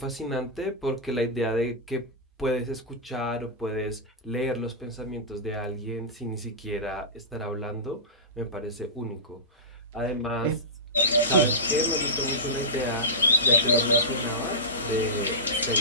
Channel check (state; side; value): normal; both; correlation -0.16